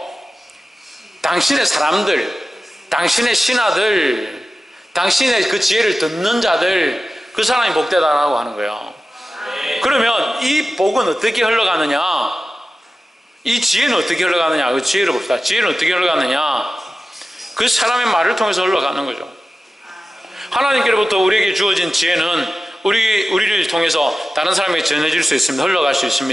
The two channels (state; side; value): normal; both; correlation 0.94